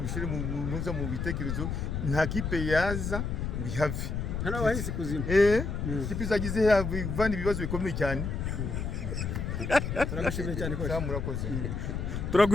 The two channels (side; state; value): left; noise; rumble, 3 dB below the sound